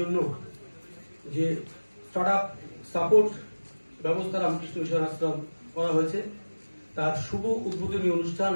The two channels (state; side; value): inverted; both; correlation -1.00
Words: যে স্টার্টআপ সাপোর্ট ব্যবস্থা রামকৃষ্ণ মিশন আশ্রম করা হয়েছে তার শুভ উদ্বোধনী অনুষ্ঠান